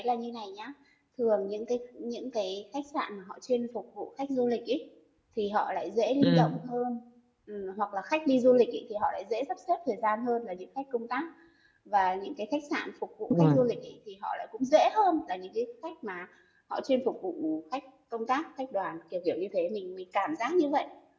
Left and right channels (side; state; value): both; identical; correlation 1.00